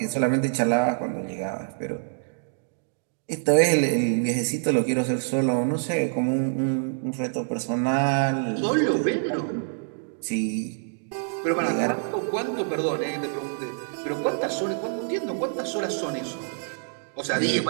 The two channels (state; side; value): silent; left; digital silence